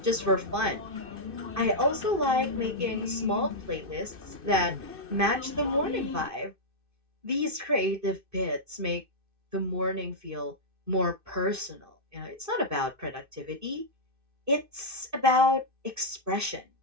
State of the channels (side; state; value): left; late; 2.6 ms